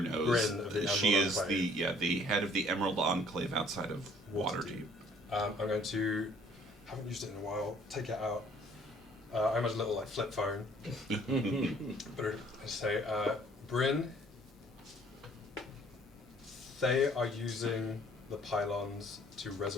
Bryn of the She Emerald is Enclave. the head of the Emerald Enclave outside of Waterdeep. I'm going to, haven't used it in a while, take it out. I imagine a little flip phone. But I say, Bryn, they are using the pylons to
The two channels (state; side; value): normal; both; correlation 0.58